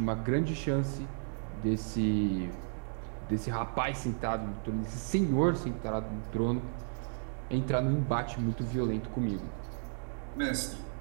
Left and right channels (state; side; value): silent; left; digital silence